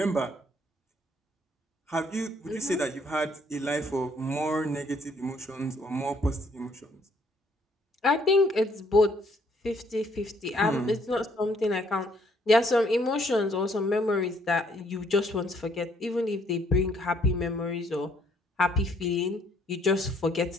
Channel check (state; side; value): normal; both; correlation 0.66